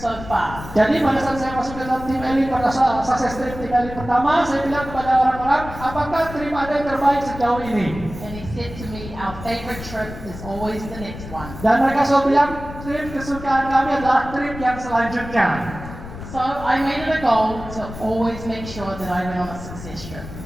far?" Jadi pada saat saya masuk ke dalam tim elit pada saat sukses trip tim elit pertama, saya bilang kepada orang-orang, apakah trip Anda yang terbaik sejauh ini? And he said to me, "Our favorite trip is always the next one." Dan mereka selalu bilang, trip kesukaan kami adalah trip yang selanjutnya. So I made it a goal to always make sure that I went on a success trip.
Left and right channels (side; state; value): left; noise; rumble, 12 dB below the sound